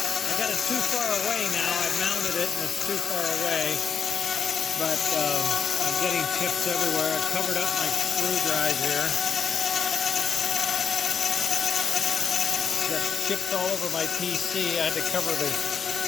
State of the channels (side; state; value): right; quieter; 6.7 dB